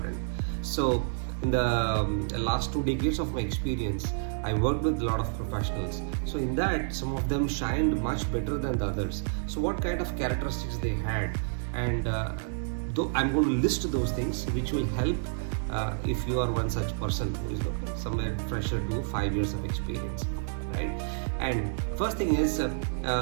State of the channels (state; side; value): silent; left; digital silence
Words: So in the last 2 decades of my experience, I worked with a lot of professionals. So in that, some of them shined much better than the others. So what kind of characteristics they had, and though I'm going to list those things which will help if you are one such person who is somewhere fresher to 5 years of experience, right? And first thing is it